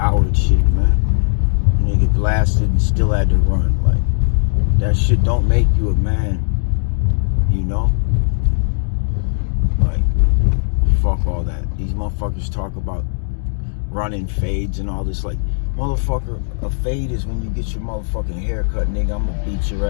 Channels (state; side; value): silent; right; digital silence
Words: shit, man. And they get blasted and still had to run. Like, that shit don't make you a man, you know? Like, fuck all that. These motherfuckers talk about running fades and all this. Like, motherfucker, a fade is when you get your motherfucking haircut, nigga. I'm gonna beat your